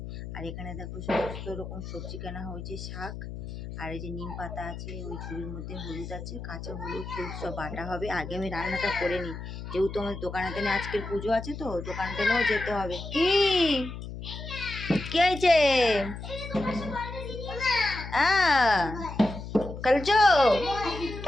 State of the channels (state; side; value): noise; left; hum, 9 dB below the sound